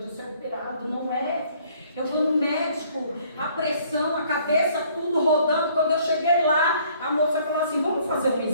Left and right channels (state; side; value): inverted; both; correlation -0.60